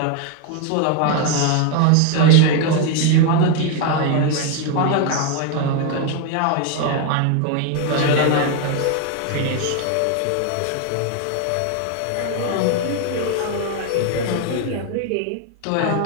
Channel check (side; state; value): both; different; correlation 0.01